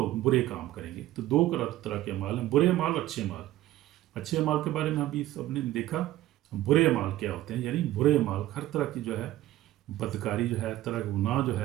برے کام کریں گے، تو دو طرح کے اعمال ہیں، برے اعمال اور اچھے اعمال۔ اچھے اعمال کے بارے میں ابھی سب نے دیکھا، برے اعمال کیا ہوتے ہیں، یعنی برے اعمال ہر طرح کی جو ہے بدکاری جو ہے، ہر طرح کا گناہ جو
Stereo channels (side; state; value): left; quieter; 14.9 dB